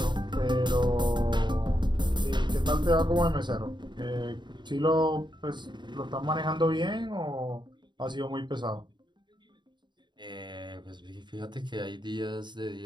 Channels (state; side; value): late; left; 0.22 ms